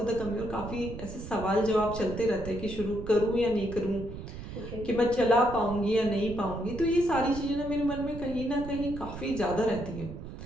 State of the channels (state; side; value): noise; right; rumble, 10 dB below the sound